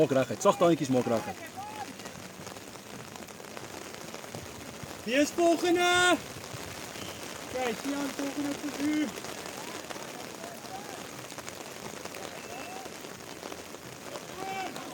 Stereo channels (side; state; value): both; identical; correlation 1.00